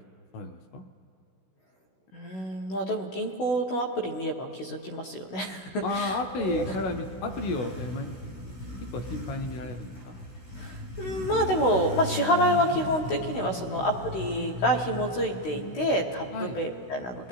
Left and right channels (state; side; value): late; right; 16 ms